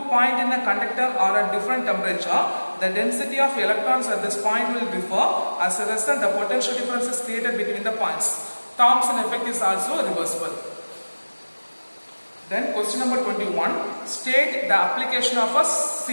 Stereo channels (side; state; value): both; inverted; correlation -1.00